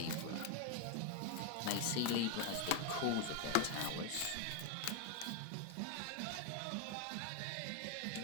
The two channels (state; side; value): different; both; correlation 0.01